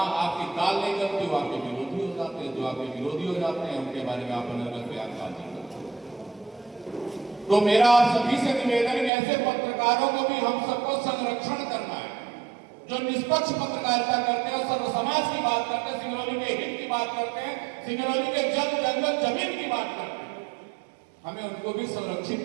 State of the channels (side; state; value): left; drops out; at 9.1 s